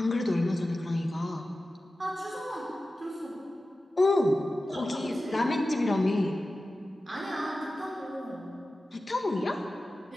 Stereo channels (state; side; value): normal; both; correlation 0.94